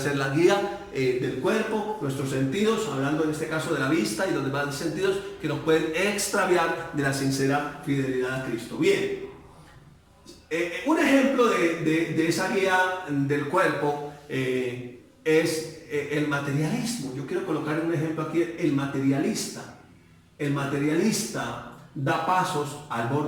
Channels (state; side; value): identical; both; correlation 1.00